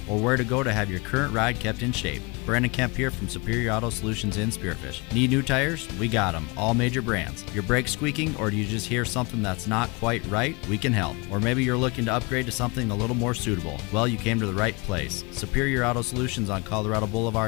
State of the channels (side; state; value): right; quieter; 28.3 dB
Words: or where to go to have your current ride kept in shape. Brandon Kemp here from Superior Auto Solutions in Spearfish. Need new tires? We got them, all major brands. Your brakes squeaking, or do you just hear something that's not quite right? We can help. Or maybe you're looking to upgrade to something a little more suitable. Well, you came to the right place. Superior Auto Solutions on Colorado